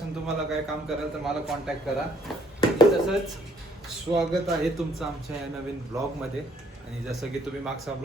तुम्हाला काय काम कराल तर मला कॉन्टॅक्ट करा. आणि तसंच स्वागत आहे तुमचं आमच्या या नवीन ब्लॉगमध्ये. आणि जसं की तुम्ही मागचा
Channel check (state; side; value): normal; both; correlation 0.65